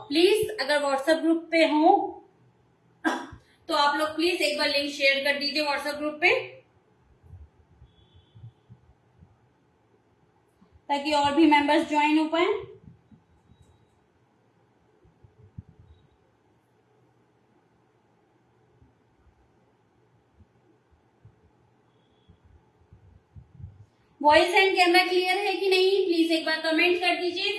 प्लीज अगर व्हाट्सएप ग्रुप पे हो तो आप लोग प्लीज एक बार लिंक शेयर कर दीजिए व्हाट्सएप ग्रुप पे, ताकि और भी मेंबर्स ज्वाइन हो पाए। वॉइस एंड कैमरा क्लियर है कि नहीं, प्लीज एक बार कमेंट कर दीजिए।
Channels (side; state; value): both; identical; correlation 1.00